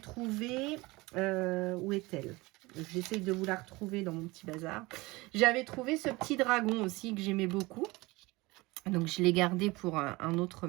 où est-elle? J'essaye de vous la retrouver dans mon petit bazar. J'avais trouvé ce petit dragon aussi que j'aimais beaucoup. Donc, je l'ai gardé pour un autre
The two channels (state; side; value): quieter; left; 22.3 dB